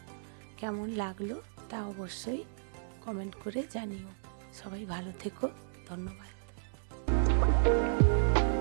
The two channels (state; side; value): silent; left; digital silence